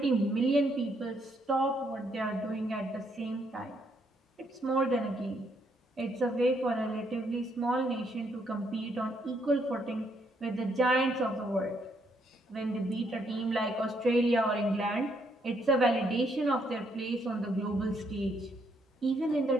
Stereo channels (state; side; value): normal; both; correlation 0.73